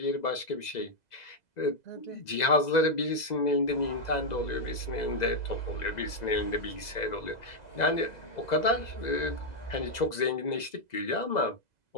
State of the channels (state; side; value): late; right; 2.0 ms